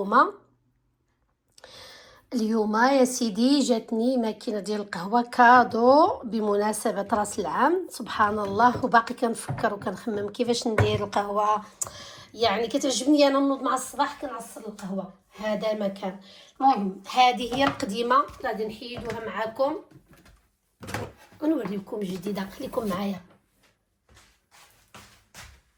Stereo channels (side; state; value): both; identical; correlation 1.00